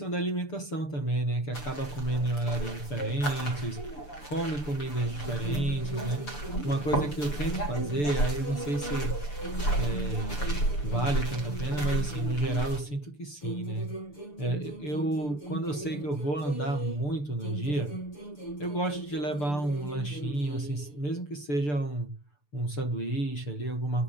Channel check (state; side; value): late; right; 6.8 ms